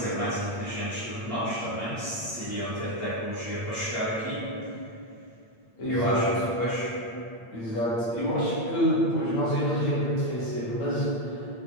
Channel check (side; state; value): right; late; 8.8 ms